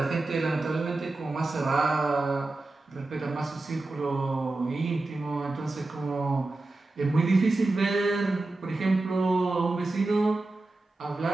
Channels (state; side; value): quieter; left; 3.1 dB